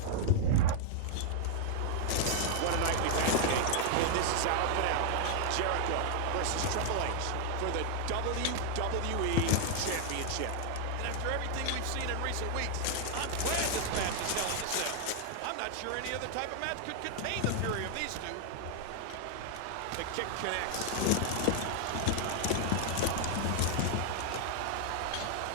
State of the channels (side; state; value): both; different; correlation 0.00